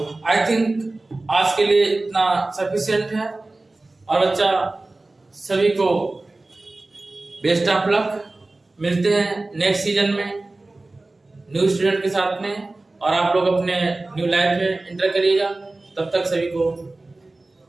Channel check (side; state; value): left; quieter; 3.0 dB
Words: आई थिंक आज के लिए इतना सफिशिएंट है, और बच्चा सभी को बेस्ट ऑफ लक, मिलते हैं नेक्स्ट सीजन में न्यू स्टूडेंट के साथ में, और आप लोग अपने न्यू लाइफ में एंटर करिएगा। तब तक सभी को